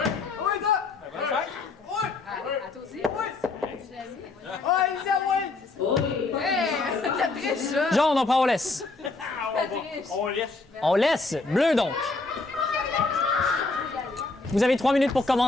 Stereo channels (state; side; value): quieter; right; 3.6 dB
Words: ça! Oui! À toi aussi? Oui! Oui, ça, oui! Oh, les POC. T'as triché, ça! Jaune, on prend, on laisse. On laisse. Bleu, donc. Vous avez 3 minutes pour